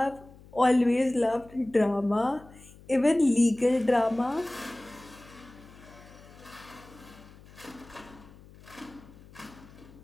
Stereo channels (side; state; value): left; noise; hum, 22 dB below the sound